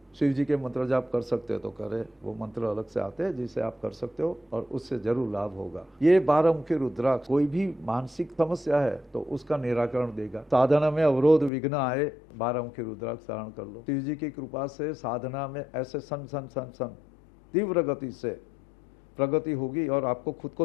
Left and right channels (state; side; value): drops out; right; at 11.5 s